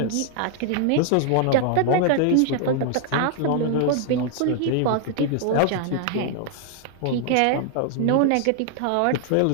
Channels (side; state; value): both; different; correlation 0.00